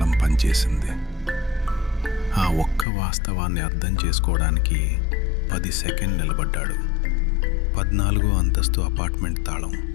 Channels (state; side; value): drops out; right; at 2.9 s